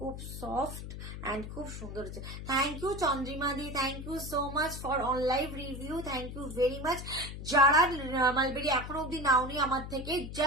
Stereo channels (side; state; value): left; noise; hum, 9 dB below the sound